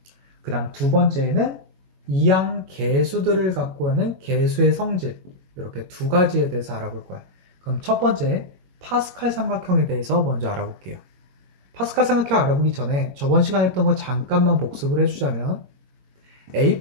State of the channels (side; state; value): left; late; 21 ms